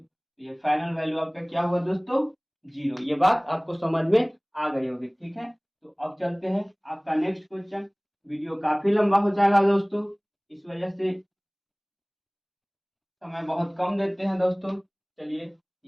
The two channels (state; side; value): identical; both; correlation 1.00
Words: ये फाइनल वैल्यू आपका क्या हुआ दोस्तों? 0। ये बात आपको समझ में आ गई होगी, ठीक है। तो अब चलते हैं आपका नेक्स्ट क्वेश्चन। वीडियो काफी लंबा हो जाएगा दोस्तों, इस वजह से समय बहुत कम देते हैं दोस्तों। चलिए